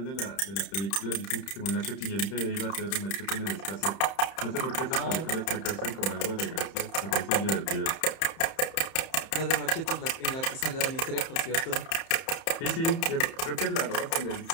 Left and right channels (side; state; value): right; late; 31 ms